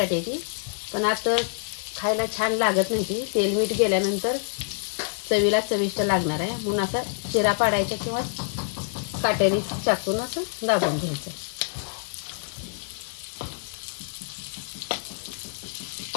ती, पण आता खायला छान लागत नाही ती, तेल मीठ गेल्यानंतर चवीला चविष्ट लागणार आहे। म्हणून असा चिरा पाडायचा किंवा काटेरी चाकून असं दाबून घ्यायचं।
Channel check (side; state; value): right; silent; digital silence